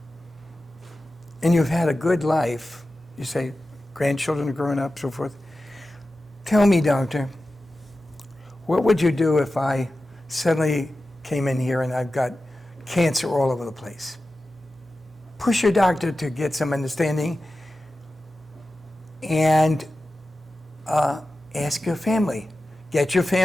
and you've had a good life, you say, grandchildren are growing up, so forth, tell me, doctor, what would you do if I suddenly came in here and I've got cancer all over the place? Push your doctor to get some understanding and ask your family. Get your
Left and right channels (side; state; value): both; normal; correlation 0.93